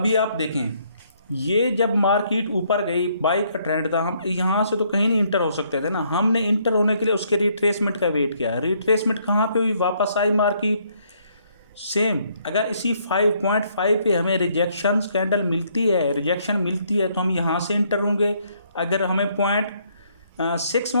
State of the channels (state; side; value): inverted; both; correlation -0.69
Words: आप देखें, ये जब मार्केट ऊपर गई, बाई का ट्रेंड था, हम यहाँ से तो कहीं नहीं इंटर हो सकते थे ना। हमने इंटर होने के लिए उसके रिट्रेसमेंट का वेट किया। रिट्रेसमेंट कहाँ पे हुई? वापस आई मार्केट। सेम अगर इसी 5.5 पे हमें रिजेक्शन कैंडल मिलती है तो हम यहाँ से इंटर होंगे। अगर हमें